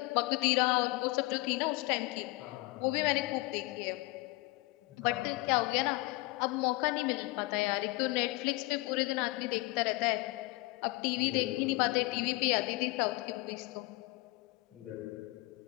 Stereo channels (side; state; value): right; quieter; 22.3 dB